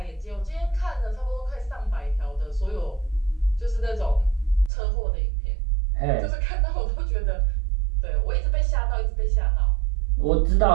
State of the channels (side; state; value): left; drops out; at 4.7 s